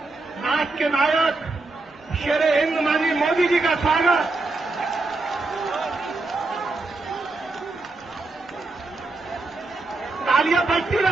राष्ट्र के नायक शेरे हिंद माननीय मोदी जी का स्वागत। तालियां बजती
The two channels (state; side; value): quieter; left; 3.3 dB